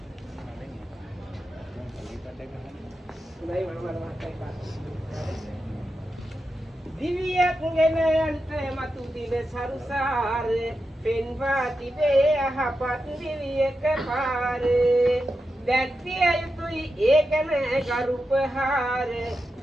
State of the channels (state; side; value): normal; both; correlation 0.89